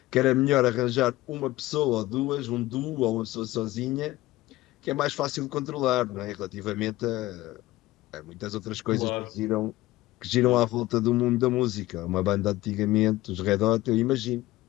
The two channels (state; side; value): quieter; right; 17.3 dB